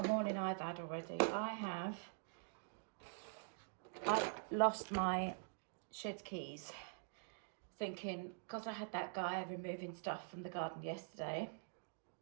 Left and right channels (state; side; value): silent; left; digital silence